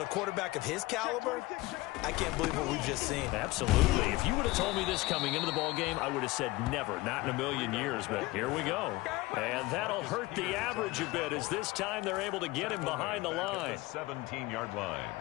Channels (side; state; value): right; quieter; 20.4 dB